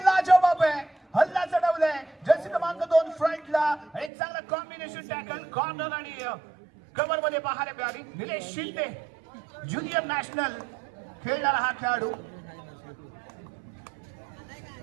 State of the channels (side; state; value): left; drops out; at 4.1 s